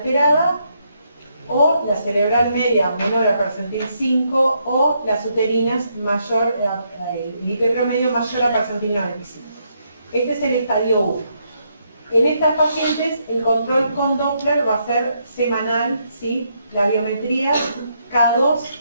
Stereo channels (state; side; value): inverted; both; correlation -0.76